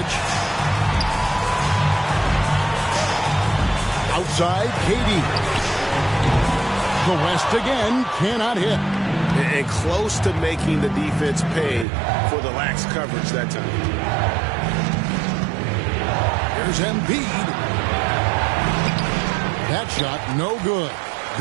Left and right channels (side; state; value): left; drops out; at 11.9 s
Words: Outside, KD. The West again cannot hit. And close to making the defense pay for the lax coverage that time. Here's Embiid. That shot no good.